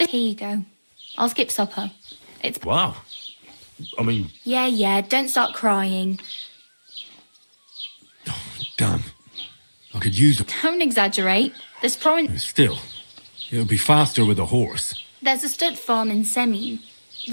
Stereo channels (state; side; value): inverted; both; correlation -1.00